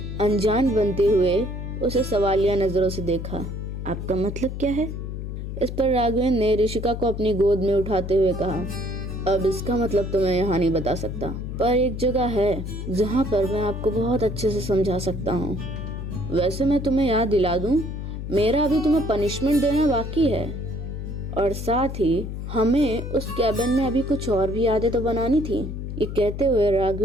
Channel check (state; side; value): noise; left; hum, 6 dB below the sound